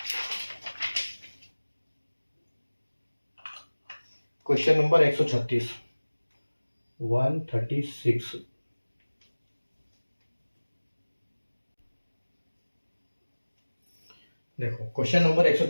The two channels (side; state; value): both; inverted; correlation -1.00